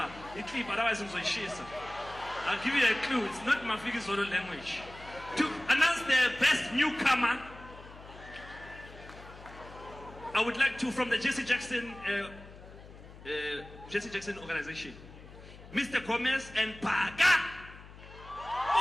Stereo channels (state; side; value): noise; left; hum, 18 dB below the sound